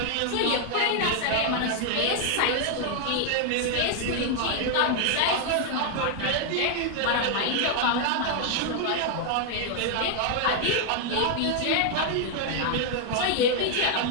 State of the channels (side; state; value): both; different; correlation 0.00